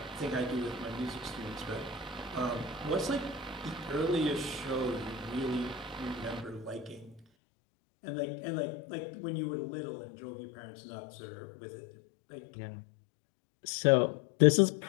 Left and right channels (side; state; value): right; drops out; at 7.2 s